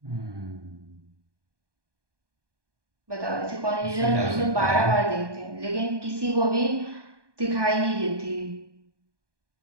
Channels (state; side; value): late; left; 1.2 ms